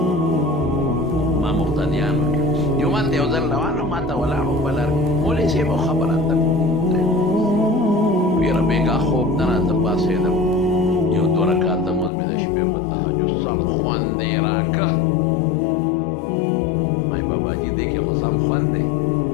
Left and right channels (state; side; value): drops out; right; at 12.1 s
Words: ما مقتدیانو کې جومات ته یو ځل روان وم، ما ته ولاړ وم په لار کې مولوي صاحب یو خبره ته ویره بېګا خوب نه راته پاڅېدم، یو دوه رکعته مونځ مې د شپې په تهجد سم خوند یې راکړه. مای باباجي دې کې خو سم خوند دی،